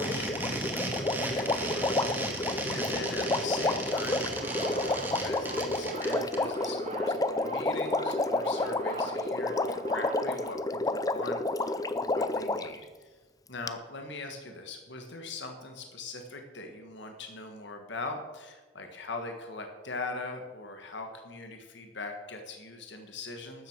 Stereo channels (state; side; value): normal; both; correlation 0.41